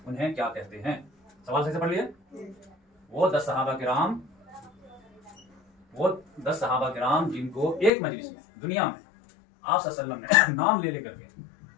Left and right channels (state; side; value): drops out; right; at 7.9 s